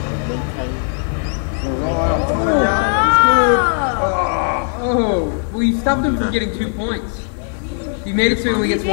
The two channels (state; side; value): silent; right; 57 dB below the other